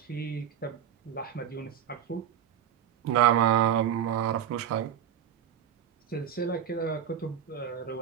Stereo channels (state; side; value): quieter; left; 9.3 dB